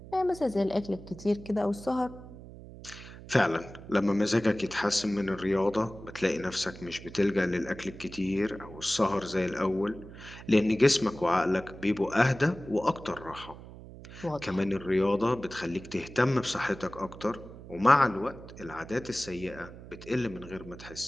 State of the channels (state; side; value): noise; right; hum, 16 dB below the sound